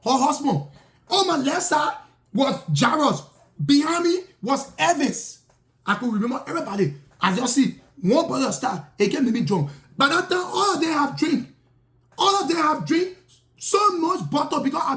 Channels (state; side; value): identical; both; correlation 1.00